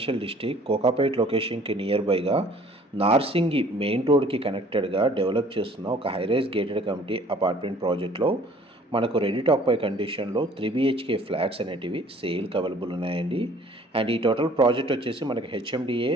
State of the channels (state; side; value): normal; both; correlation 0.54